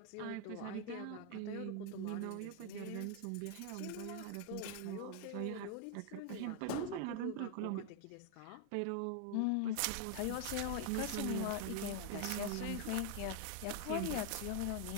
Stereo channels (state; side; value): different; both; correlation 0.00